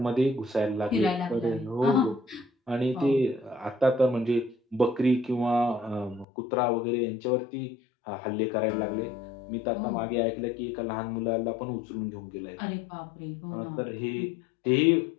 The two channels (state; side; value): drops out; right; at 6.2 s